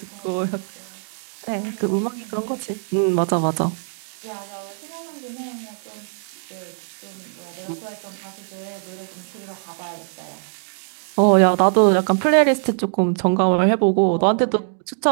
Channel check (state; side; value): silent; left; digital silence